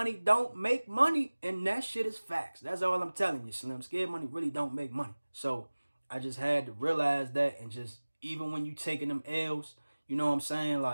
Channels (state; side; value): inverted; both; correlation -1.00